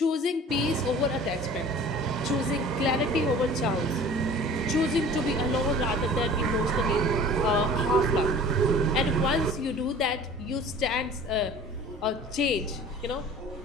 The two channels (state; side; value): normal; both; correlation 0.45